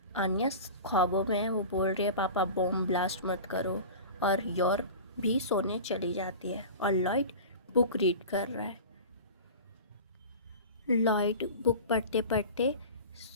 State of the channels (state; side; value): inverted; both; correlation -0.34